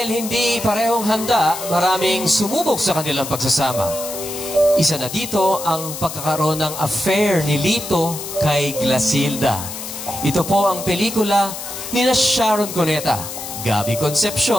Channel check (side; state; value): left; noise; hiss, 9 dB below the sound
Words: hindi parehong handa, maraming sumubok sa kanilang pagsasama. Isa na dito ang pagkakaroon ng affair ni Lito kay Glasilda. Ito po ang pelikula ni Sharon Cuneta, Gabby